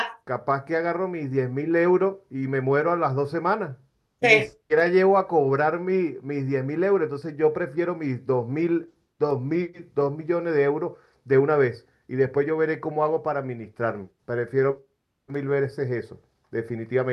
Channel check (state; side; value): identical; both; correlation 1.00